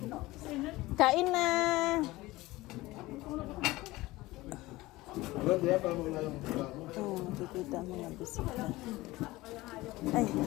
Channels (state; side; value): quieter; right; 19.3 dB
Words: Kain na. Oh, kikita mo na bisita. Ay,